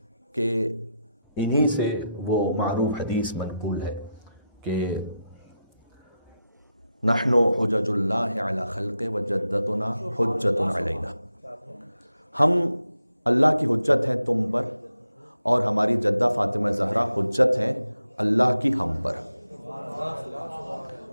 کہ انہی سے وہ معروف حدیث منقول ہے کہ نحن حجج اللہ علی خلق وجدتنا حجت علینا. ہم اللہ کی حجت ہیں تم پر اور ہماری جدہ فاطمہ زہرا حجت ہیں اللہ کی ہم پر.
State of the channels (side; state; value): both; inverted; correlation -0.86